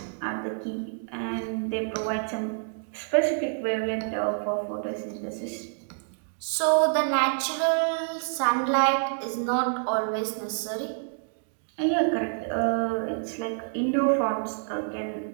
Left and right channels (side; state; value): left; silent; digital silence